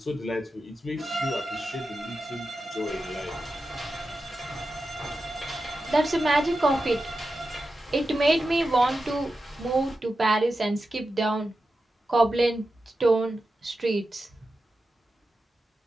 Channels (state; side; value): normal; both; correlation 0.91